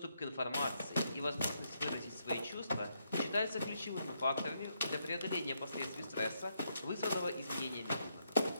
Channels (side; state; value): both; inverted; correlation -0.78